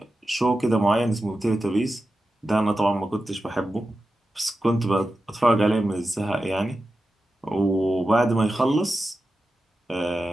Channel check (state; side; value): normal; both; correlation 0.92